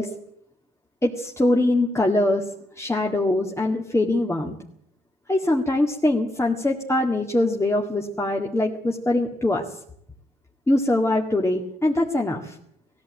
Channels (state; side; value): normal; both; correlation 0.83